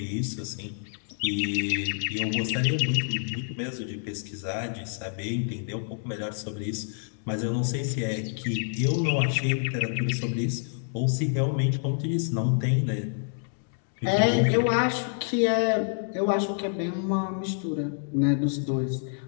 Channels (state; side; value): silent; right; digital silence